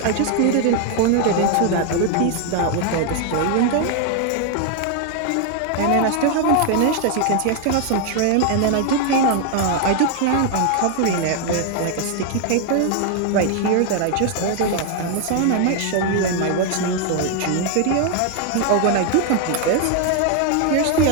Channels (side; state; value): both; different; correlation 0.01